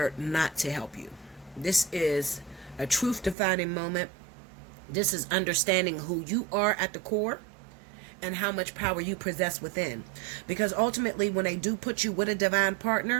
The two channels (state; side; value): drops out; left; at 3.4 s